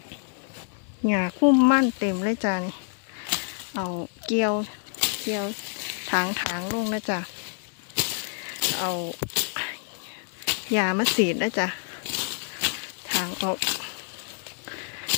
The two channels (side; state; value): right; silent; 60 dB below the other